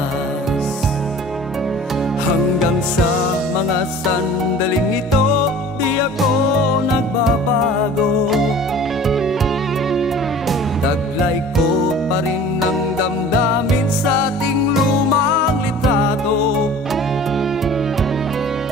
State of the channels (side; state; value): both; normal; correlation 0.44